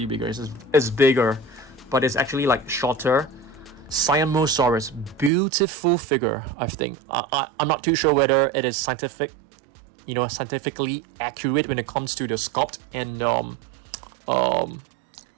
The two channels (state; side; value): drops out; left; at 5.3 s